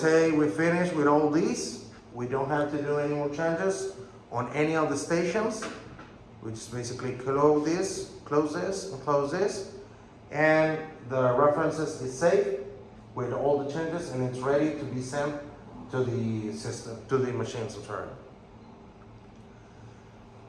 say we finish with all these. We don't have to do any more changes on any of the stations. We just basically close this, and close this. And the references is saved with all the changes, and it's ready to be sent to the system, to the machine. So sorry.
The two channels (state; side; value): identical; both; correlation 1.00